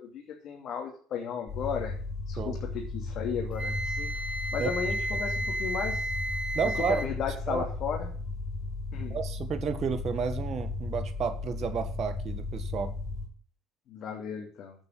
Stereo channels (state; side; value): normal; both; correlation 0.64